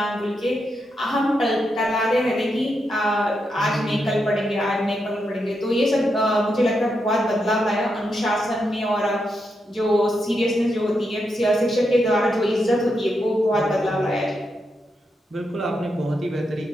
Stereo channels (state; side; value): normal; both; correlation 0.84